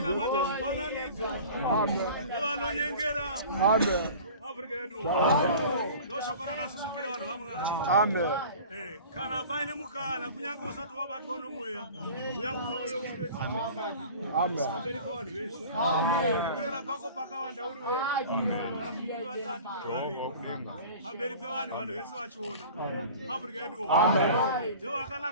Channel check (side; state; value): both; inverted; correlation -0.41